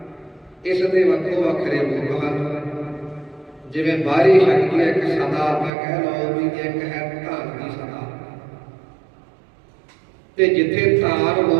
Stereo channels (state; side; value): drops out; left; at 5.7 s